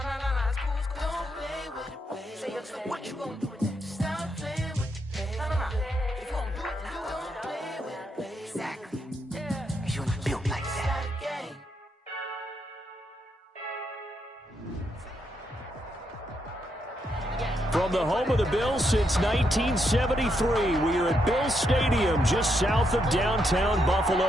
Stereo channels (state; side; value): normal; both; correlation 0.79